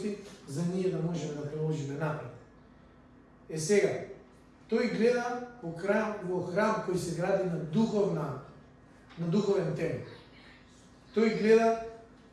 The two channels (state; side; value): identical; both; correlation 1.00